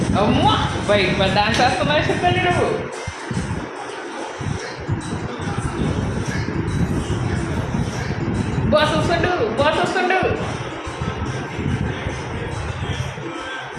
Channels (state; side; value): identical; both; correlation 1.00